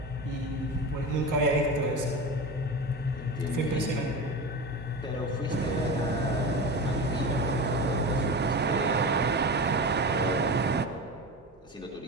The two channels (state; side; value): normal; both; correlation 0.26